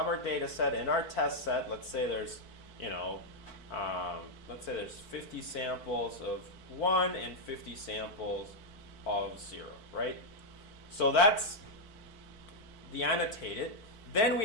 our data set and our test set. Let's say there's, let's say there's 50 samples of 1 and 50 samples of 0, right? So that's the annotated. Then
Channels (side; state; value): right; late; 4.5 ms